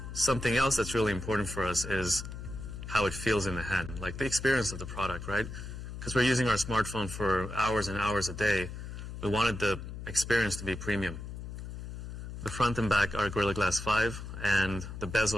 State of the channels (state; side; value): noise; left; hum, 9 dB below the sound